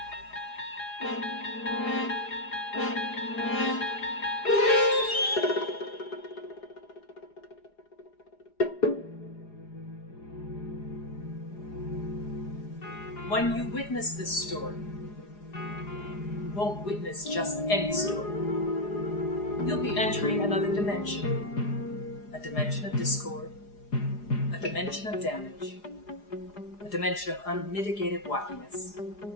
When you witness this story, you won't witness just any story. You'll be entering another dimension. A dimension of discord, a dimension of damage, a dimension of unmitigated wackiness.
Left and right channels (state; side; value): late; right; 4.9 ms